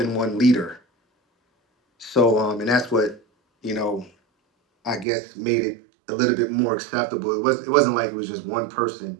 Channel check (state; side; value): drops out; left; at 5.1 s